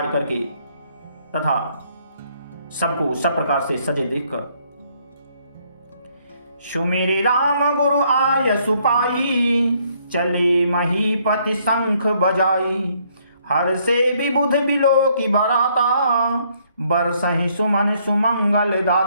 करके तथा सबको सब प्रकार से सजे देखकर। सुमेरे राम गुरु आय सुपाई, चले महीपति शंख बजाई। हर से विबुध बिलो की बराता, बरसहि सुमन सुमंगल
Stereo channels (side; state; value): both; inverted; correlation -0.68